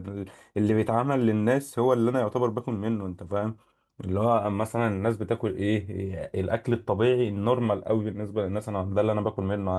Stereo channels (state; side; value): identical; both; correlation 1.00